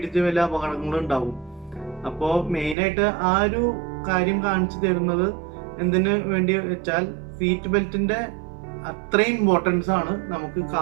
വലിയ അപകടങ്ങളും ഉണ്ടാവും. അപ്പോൾ മെയിനായിട്ട് ആ ഒരു കാര്യം കാണിച്ചു തരുന്നത് എന്തിനു വേണ്ടി വെച്ചാൽ, സീറ്റ് ബെൽറ്റിന്റെ അത്രയും ഇമ്പോർട്ടൻസ് ആണ് നമുക്ക്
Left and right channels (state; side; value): drops out; left; at 2.8 s